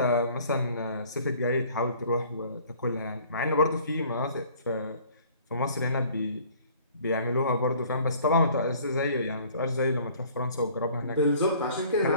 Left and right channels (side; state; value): both; inverted; correlation -0.54